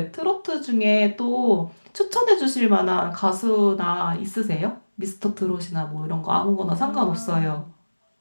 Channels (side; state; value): both; inverted; correlation -1.00